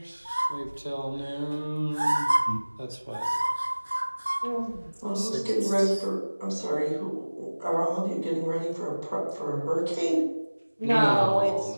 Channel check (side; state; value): both; inverted; correlation -1.00